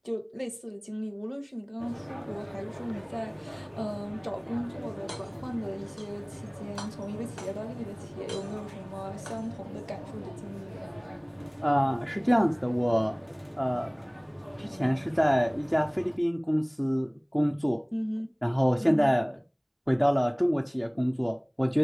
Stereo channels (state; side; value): identical; both; correlation 1.00